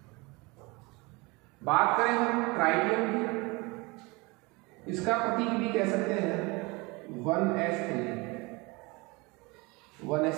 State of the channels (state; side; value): quieter; left; 25.8 dB